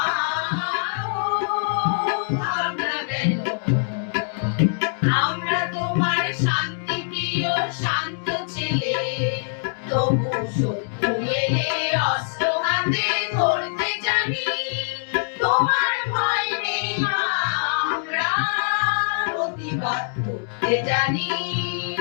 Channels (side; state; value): right; silent; digital silence